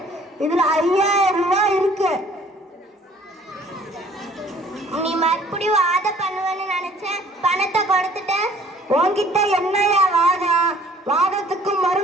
இதுல 5000 ரூபாய் இருக்கு. நீ மறுபடியும் வாத பண்ணுவேன்னு நினைச்சேன், பணத்தை கொடுத்துட்ட. உன்கிட்ட என்னையா வாதம்? வாதத்துக்கு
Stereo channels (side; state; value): both; normal; correlation 0.55